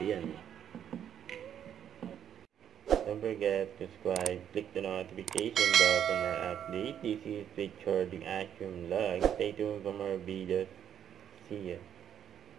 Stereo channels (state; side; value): quieter; left; 9.4 dB